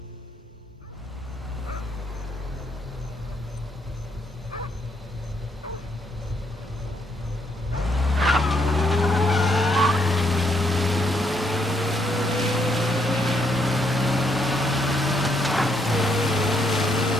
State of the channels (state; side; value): normal; both; correlation 0.74